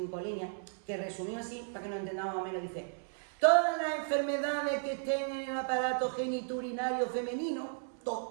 líneas que resumido así, para que nos entendamos más o menos, dice: todas las enfermedades que estén en el aparato genitourinario femenino,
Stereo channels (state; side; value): silent; left; 55 dB below the other